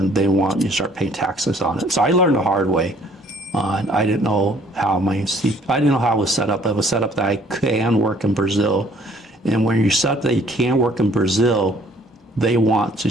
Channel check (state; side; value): normal; both; correlation 0.60